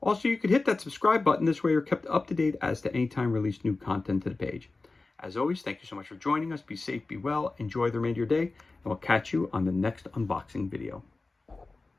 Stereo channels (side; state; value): right; quieter; 3.5 dB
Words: Also, you could hit that subscribe button. This way you're kept up to date as to any time release new content to the page. As always, thank you so much for joining us. Be safe, be well, enjoy the remainder of your day, and we'll catch you on the next unboxing video.